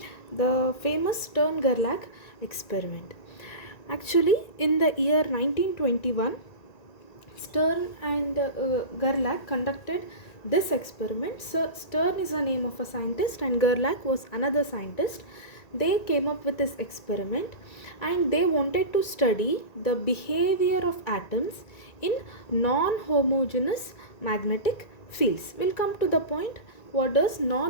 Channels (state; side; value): late; right; 1.9 ms